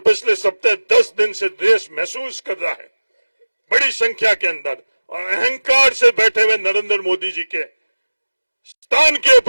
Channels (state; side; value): inverted; both; correlation -1.00